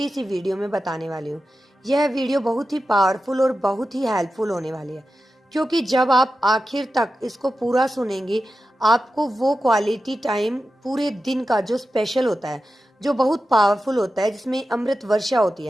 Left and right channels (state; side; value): normal; both; correlation 0.92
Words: सी वीडियो में बताने वाली हूँ। यह वीडियो बहुत ही पावरफुल और बहुत ही हेल्पफुल होने वाली है, क्योंकि जब आप आखिर तक इसको पूरा सुनेंगे, आपको वो क्वालिटी टाइम पूरे दिन का जो स्पेशल होता है, जो बहुत पावरफुल होता है, जिसमें अमृत वर्षा होती